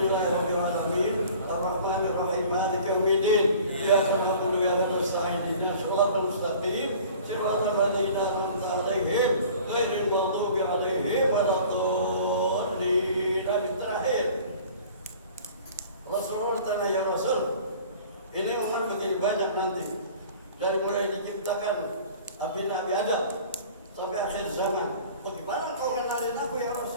alamin. Arrahmanirrahim. Maliki yaumiddin. Iyyaka na'budu wa iyyaka nasta'in. Ihdinas siratal mustaqim. Siratal ladzina an'amta 'alaihim ghairil maghdubi 'alaihim waladdallin. Terakhir, Rasulullah tanya, ya Rasul, ini umat begini banyak nanti, dari mulai diciptakan Nabi Adam sampai akhir zaman. Bagaimana kau kenalin aku ya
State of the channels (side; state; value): both; inverted; correlation -0.46